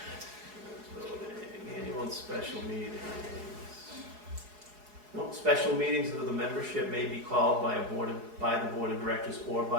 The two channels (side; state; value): left; late; 4.8 ms